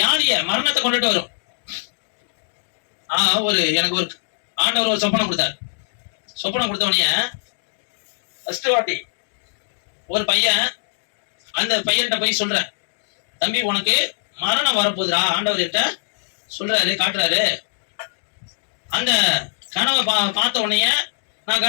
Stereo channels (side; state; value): right; silent; digital silence